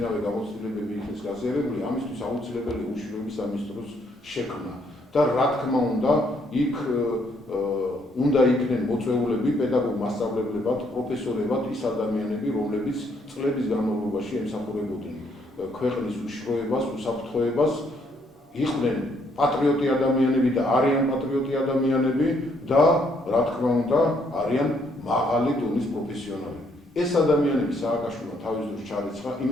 გამოცდილებები იქნეს გაზიარებული, ამისთვის აუცილებელია უშიშროების სამინისტროს შექმნა. და რა თქმა უნდა, იქ უნდა იქნენ მოწვეულები, პედაგოგ-მასწავლებლებად, პროფესორებად ის ადამიანები, რომლებიც წლების განმავლობაში ემსახურებოდნენ ქვეყნის უშიშროებას, უსაფრთხოებას, იყვნენ პატრიოტი ადამიანები და არიან პატრიოტი ადამიანები და რა თქმა უნდა, არიან მაღალი დონის პროფესიონალები. ეს ადამიანები სააკაშვილმა თავის დროს ჩარიცხა,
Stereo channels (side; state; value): both; normal; correlation 0.70